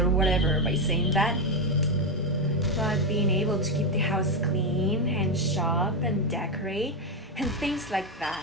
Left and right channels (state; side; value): normal; both; correlation 0.07